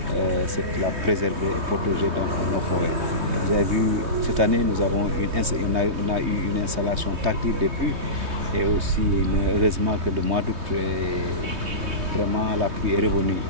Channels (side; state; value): left; late; 3.2 ms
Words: la préserver et protéger nos forêts. Vous avez vu, cette année, on a eu une installation tactile des pluies et aussi, heureusement que le mois d'août, vraiment la pluie est revenue